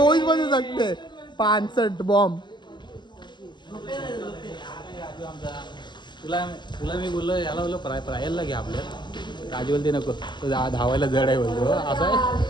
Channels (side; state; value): right; late; 0.22 ms